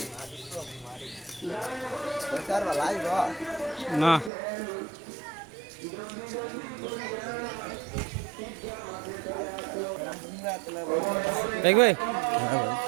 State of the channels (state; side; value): drops out; left; at 4.3 s